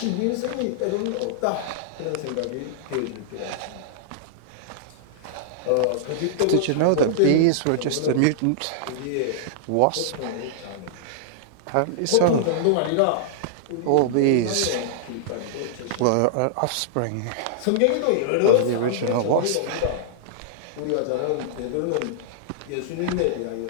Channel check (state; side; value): different; both; correlation -0.01